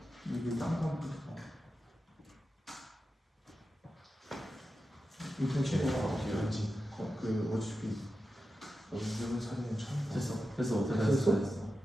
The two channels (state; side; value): normal; both; correlation 0.91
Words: 이게 딴거 인터넷 최고가 어떻게 하는지 그 어차피 연습을 사진은 처음 봐. 됐어.